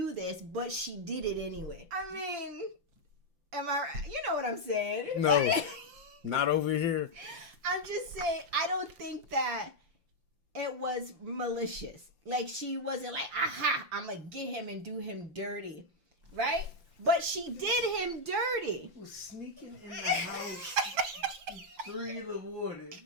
this, but she did it anyway. I mean, you know what I'm saying? No, not over here. I'm just saying, I don't think that it was malicious. Like, she wasn't like, aha, I'm going to get him and do him dirty. Right? But she did him dirty. Was sneaking in the house 3 in the morning.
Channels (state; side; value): late; left; 5.8 ms